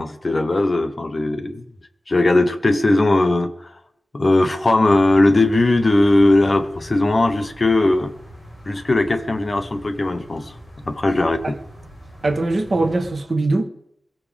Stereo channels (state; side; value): normal; both; correlation 0.96